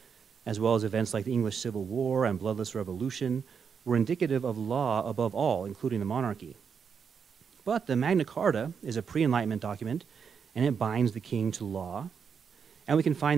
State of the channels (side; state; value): left; quieter; 6.6 dB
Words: as well as events like the English Civil War and Bloodless Revolution, were indicative of law above all, including the monarchy. But the Magna Carta is a pre-Enlightenment document, and it binds the king to law. And we can